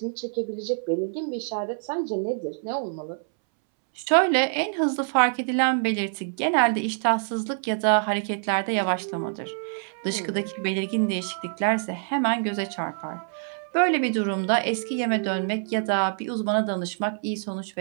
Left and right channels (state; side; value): silent; left; 61 dB below the other